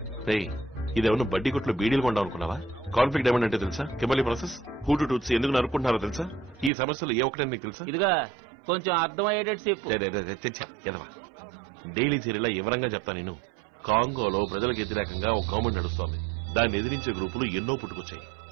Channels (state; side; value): drops out; left; at 6.7 s